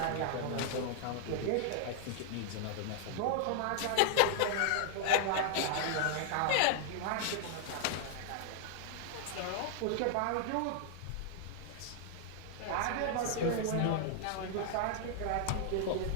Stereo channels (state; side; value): different; both; correlation -0.01